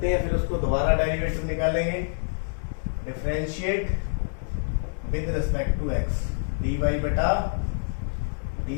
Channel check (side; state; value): right; silent; 60 dB below the other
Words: हैं, फिर उसको दोबारा डेरिवेटिव निकालेंगे। Differentiate with respect to x dy बटा